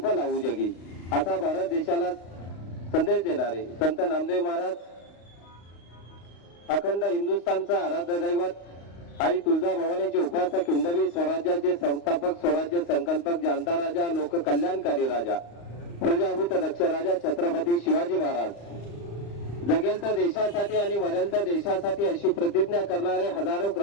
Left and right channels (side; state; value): right; late; 35 ms